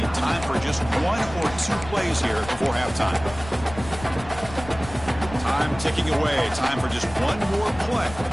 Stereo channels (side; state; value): left; noise; rumble, 14 dB below the sound